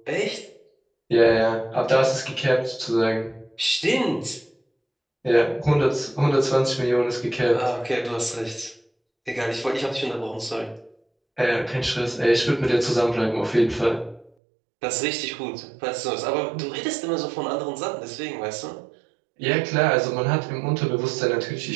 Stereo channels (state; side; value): drops out; left; at 14.3 s